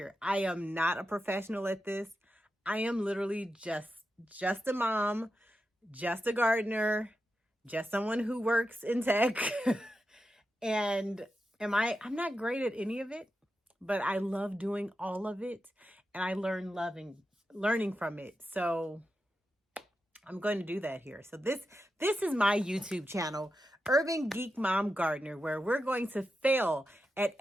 I am not a professional at this. I am literally just a mom, just a gardener, just someone who works in tech. And I'm not great at any of it, but I love doing all of it, and I learning from it. So I'm going to do that here. So this is my YouTube channel, Urban Geek Mom Gardener, where we're going to fail at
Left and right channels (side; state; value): both; normal; correlation 0.89